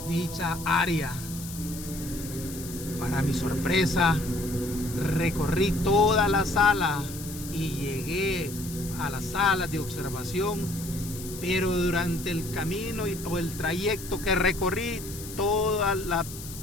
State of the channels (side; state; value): left; noise; hiss, 12 dB below the sound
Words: dicha área. Para mi sorpresa, recorrí toda la sala y llegué a la sala de observación, pero durante el camino o el trayecto que recorrí, todas